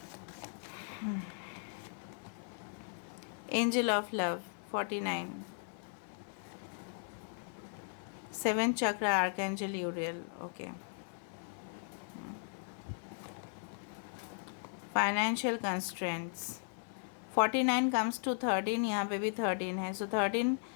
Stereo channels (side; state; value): right; silent; 53 dB below the other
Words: Angel of Love, 49. 7th chakra, Archangel Uriel. Okay. Financial constraints. 49 comes to 13, यहाँ पे भी 13 है, so 13